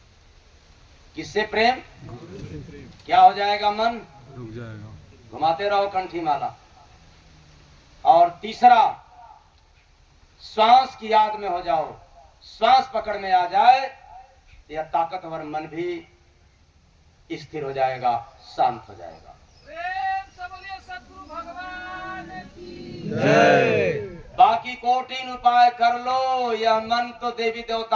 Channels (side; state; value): both; identical; correlation 1.00